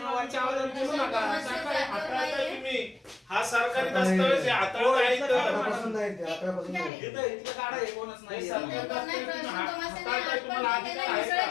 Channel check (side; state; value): right; drops out; at 6.9 s